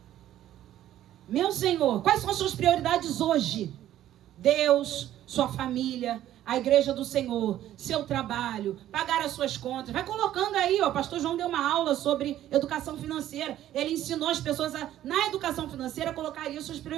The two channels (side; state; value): left; quieter; 12.5 dB